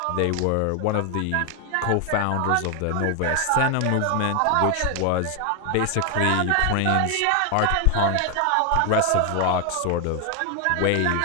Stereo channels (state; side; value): different; both; correlation 0.00